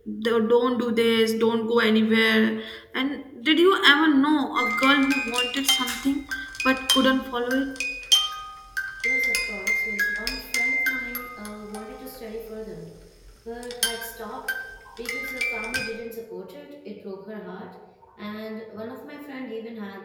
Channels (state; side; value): identical; both; correlation 1.00